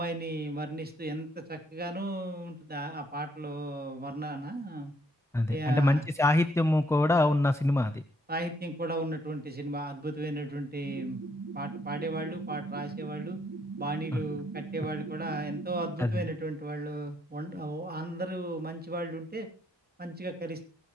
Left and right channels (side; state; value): both; normal; correlation 0.71